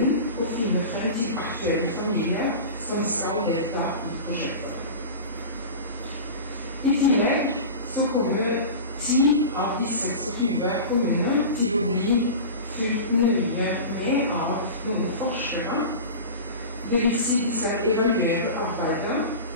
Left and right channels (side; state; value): both; inverted; correlation -0.31